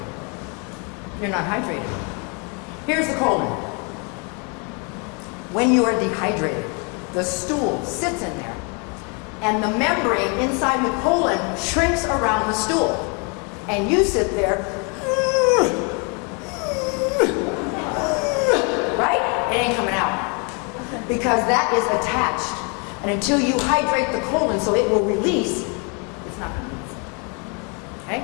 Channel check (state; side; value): quieter; right; 34.6 dB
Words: You're not hydrated. Here's the colon. When you are dehydrated, the stool sits in there, and the membrane inside the colon shrinks around the stool. And you sit there, right? It ain't coming out. Because that is attached. And until you hydrate the colon so it will release, it's not going to move.